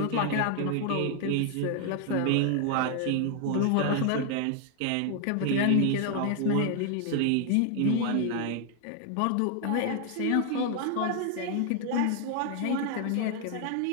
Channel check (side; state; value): both; different; correlation 0.00